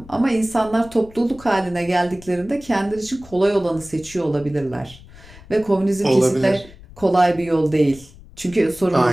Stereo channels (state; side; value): noise; left; rumble, 21 dB below the sound